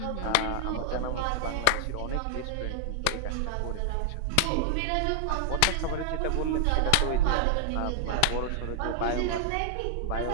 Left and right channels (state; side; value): different; both; correlation 0.00